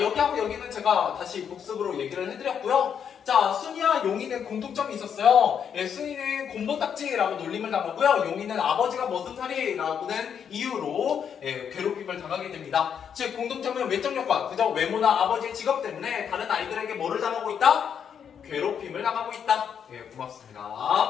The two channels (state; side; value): quieter; right; 7.8 dB